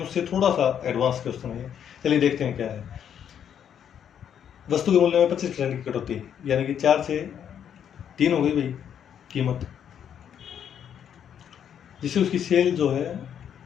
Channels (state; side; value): quieter; right; 8.9 dB